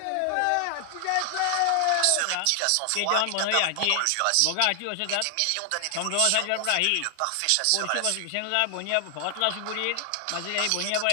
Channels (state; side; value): different; both; correlation 0.00